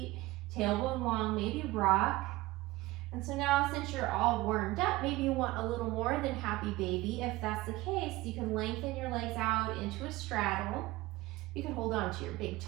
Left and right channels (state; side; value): quieter; left; 19.4 dB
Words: tailbone long, maybe rock. And so now, since you're all warmed up, maybe you want a little more than happy baby. If that's the case, you can lengthen your legs out into a straddle. You can hold on to your big